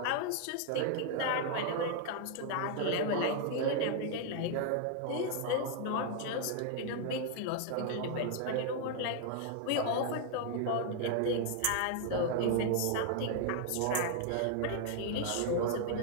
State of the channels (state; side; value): different; both; correlation 0.00